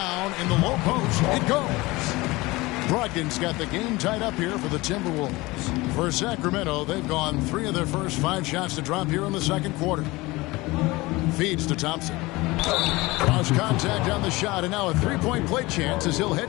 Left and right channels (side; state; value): right; quieter; 21.5 dB